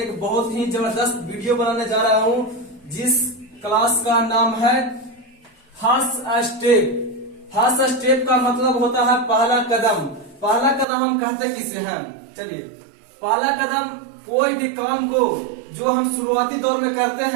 बहुत ही जबरदस्त वीडियो बनाने जा रहा हूं, जिस क्लास का नाम है फर्स्ट स्टेप। फर्स्ट स्टेप का मतलब होता है पहला कदम। पहला कदम हम कहते किसे हैं? चलिए, पहला कदम कोई भी काम को जो हम शुरुआती दौर में करते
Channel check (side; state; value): left; drops out; at 10.9 s